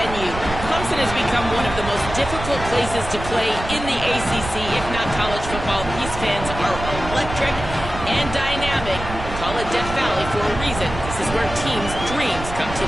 Clemson has become one of the most difficult places to play in the ACC, if not college football. These fans are electric and dynamic. Call it Death Valley for a reason. This is where teams' dreams come to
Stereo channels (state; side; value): noise; right; rumble, 8 dB below the sound